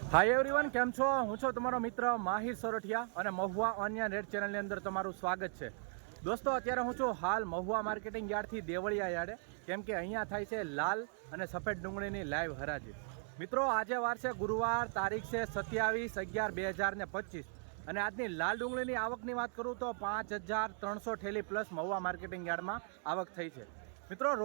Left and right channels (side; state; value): left; silent; 53 dB below the other